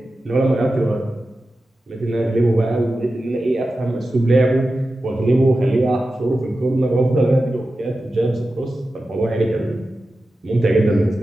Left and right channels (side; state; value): both; normal; correlation 0.93